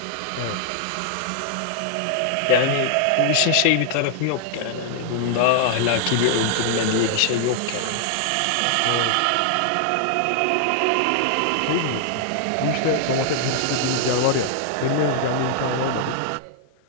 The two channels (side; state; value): both; different; correlation -0.01